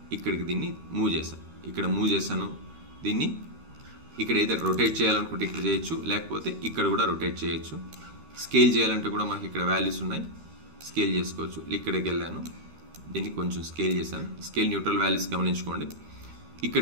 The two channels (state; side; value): late; left; 12 ms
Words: ఇక్కడికి దీన్ని మూవ్ చేశాను. ఇక్కడ మూవ్ చేశాను. దీన్ని ఇక్కడ ఏదైతే రొటేట్ చేయాలనుకుంటే ఇక్కడ చేయొచ్చు, లేకపోతే ఇక్కడ కూడా రొటేట్ చేయొచ్చు. స్కేల్ చేయాలంటే కూడా మనకి ఇక్కడ వాల్యూస్ ఉన్నాయి, స్కేల్ చేసుకోవచ్చు. ఇక్కడికి వెళ్ళాను, దీన్ని కొంచెం స్కేల్ చేశాను. స్కేల్ న్యూట్రల్ వాల్యూస్ గమనించుకోండి.